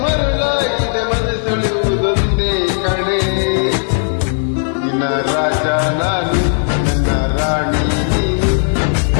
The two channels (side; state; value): right; silent; 58 dB below the other